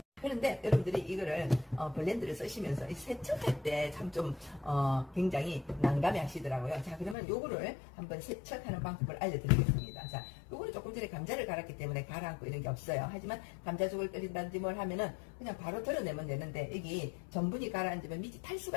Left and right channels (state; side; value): drops out; right; at 7.2 s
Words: 그런데 여러분들이 이거를 블렌드를 쓰시면서 세척할 때 참 좀 굉장히 난감해 하시더라고요. 자, 그러면 요거를 한번 세척하는 방법을 알려드리겠습니다. 자, 요거는 조금 전에 감자를 갈았기 때문에 가라앉고 이런 게 없어요. 하지만 감자죽을 끓인다든지 뭘 하면은 그냥 바로 덜어내면 되는데, 여기 전분이 가라앉으면 밑이 탈 수가